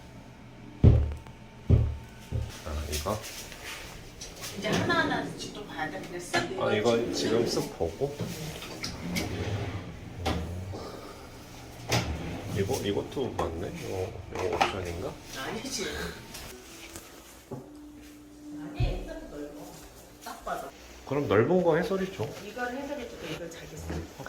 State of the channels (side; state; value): both; identical; correlation 1.00